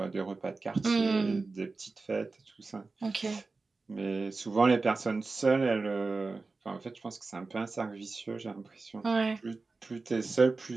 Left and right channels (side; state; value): left; quieter; 3.8 dB